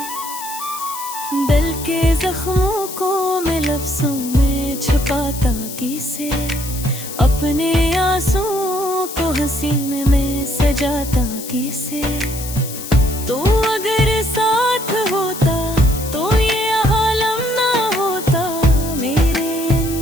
दिल के जख्मों को मैं लफ्ज़ों में छुपाता किसे, अपने आंसुओं को हंसी में सजाता किसे। तो अगर साथ होता तो ये आलम ना होता, मेरे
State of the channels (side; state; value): left; noise; hiss, 10 dB below the sound